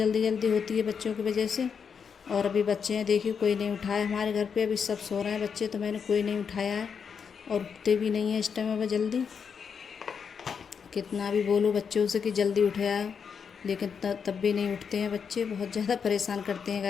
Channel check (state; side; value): quieter; right; 6.5 dB